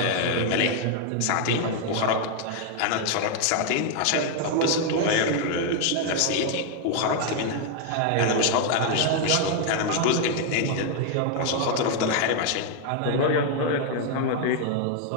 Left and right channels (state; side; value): different; both; correlation 0.00